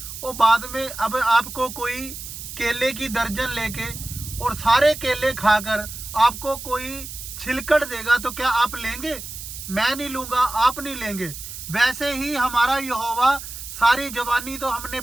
वो बाद में। अब आपको कोई केले की दर्जन लेके और सारे केले खाकर आपको कोई छिलकड़ देगा तो क्या आप लेंगे? मैं नहीं लूंगा, आप नहीं लेंगे। वैसे ही हमारा यहोवा सारी जवानी तो हमने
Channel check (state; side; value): noise; right; hiss, 10 dB below the sound